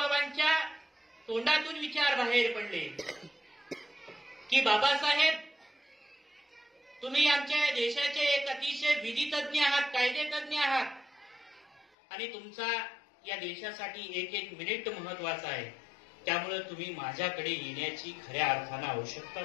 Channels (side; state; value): right; drops out; at 11.9 s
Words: तोंडातून विचार बाहेर पडले की बाबासाहेब, तुम्ही आमच्या देशाचे एक अतिशय विधितज्ञ आहात, कायदेतज्ञ आहात आणि तुमचा या देशासाठी एक एक मिनिट महत्वाचा आहे. त्यामुळे तुम्ही माझ्याकडे येण्याची खऱ्या अर्थानं